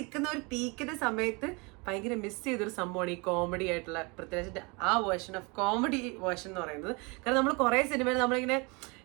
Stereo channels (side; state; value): left; quieter; 28.9 dB